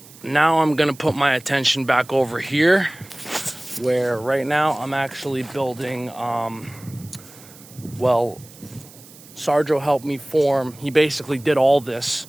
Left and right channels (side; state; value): right; noise; hiss, 21 dB below the sound